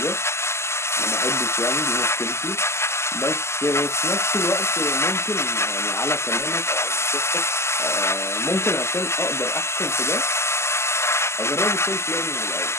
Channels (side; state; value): right; late; 0.13 ms